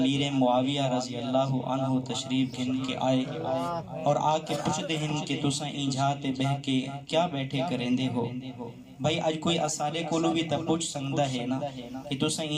معاویہ رضی اللہ عنہ تشریف گھن کے آئے اور آ کے پوچھ دے ہیں کہ تساں اینجھاتے بہ کے کیا بیٹھے کریں دے ہو بھائی آج کوئی اسارے کولو بھی تا پوچھ سکتا ہے نا کہ تساں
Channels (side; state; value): both; identical; correlation 1.00